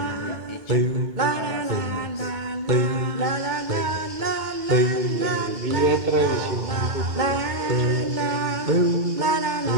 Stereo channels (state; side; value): late; left; 2.2 ms